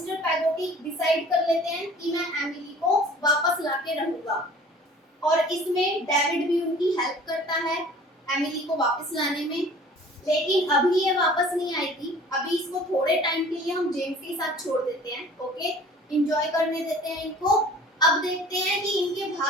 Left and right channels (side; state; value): both; normal; correlation 0.48